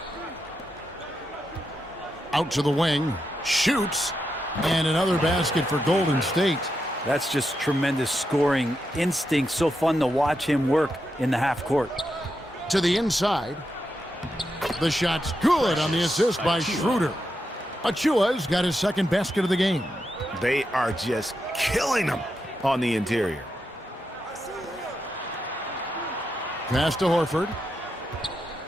Out to the wing. Shoots. And another basket for Golden State. That's just tremendous scoring instinct. So fun to watch him work in the half court. To the inside. The shot's good on the assist by Schroeder. Achua's got his second basket of the game. They are just killing them on the interior. Pass to Horford.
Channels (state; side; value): normal; both; correlation 0.85